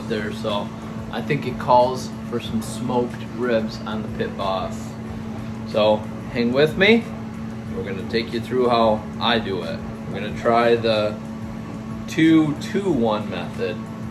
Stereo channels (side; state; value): both; identical; correlation 1.00